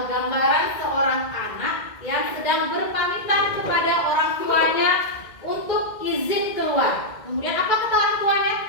gambaran seorang anak yang sedang berpamitan kepada orang tuanya untuk izin keluar. Kemudian apa kata orang tuanya?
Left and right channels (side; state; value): right; late; 2.0 ms